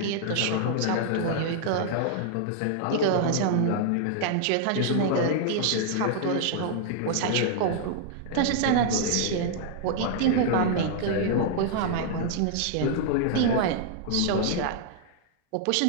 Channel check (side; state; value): both; different; correlation -0.01